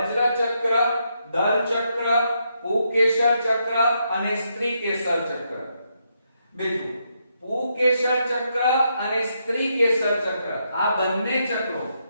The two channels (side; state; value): both; inverted; correlation -0.79